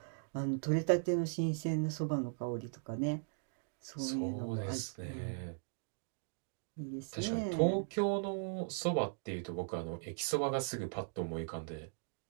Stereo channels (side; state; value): left; silent; digital silence